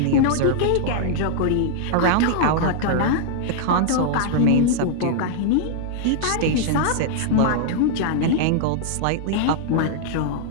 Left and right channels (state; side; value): different; both; correlation -0.01